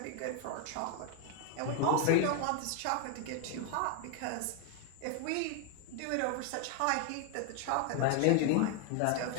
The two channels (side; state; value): both; different; correlation 0.01